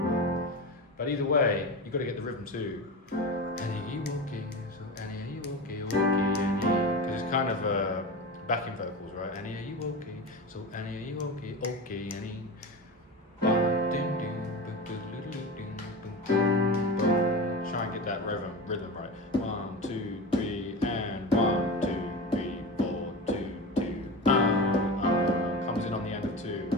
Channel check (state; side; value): normal; both; correlation 0.26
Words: But either way, you've got to get the rhythm too. Annie, are you okay? So Annie, are you okay? Okay, Annie. Because it's kind of backing vocals, right? Annie, are you okay? So Annie, are you okay? Okay, Annie. Try and get that rhythm right. 1, 2, 3, and 1, 2, 3, 4, 2, 2. Comes in on the end of 2,